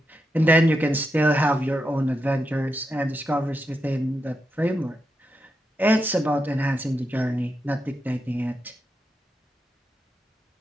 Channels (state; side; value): normal; both; correlation 0.86